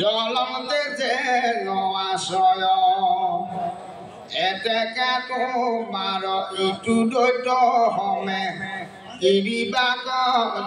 যেন আশ্ৰয় এতেকে তোমাৰ ইটো দৈত্য হমে এৰিবাক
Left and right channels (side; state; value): both; identical; correlation 1.00